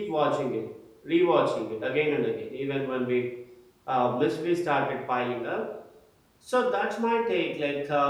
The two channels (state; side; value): identical; both; correlation 1.00